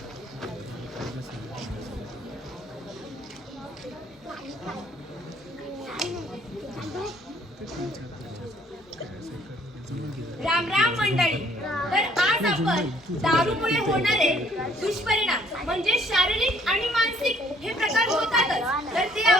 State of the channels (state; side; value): normal; both; correlation 0.61